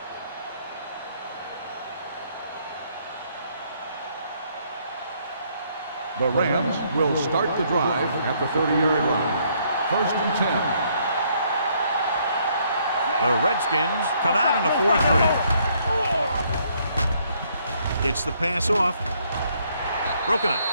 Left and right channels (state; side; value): inverted; both; correlation -0.68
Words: The Rams will start the drive at the 30-yard line. 1st and 10. The Redskins come out in a 4-3. Gets the pass off. Broken up.